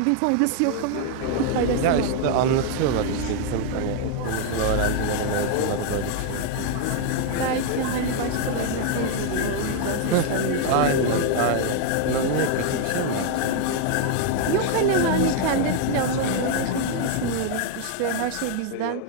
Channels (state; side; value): different; both; correlation 0.00